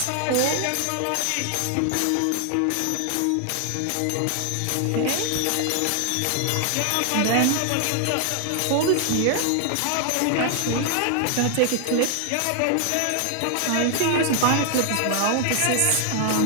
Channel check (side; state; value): both; different; correlation 0.00